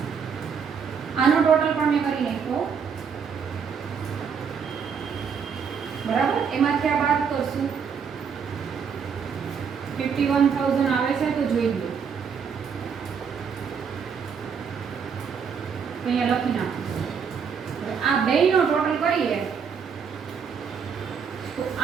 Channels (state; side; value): quieter; left; 6.6 dB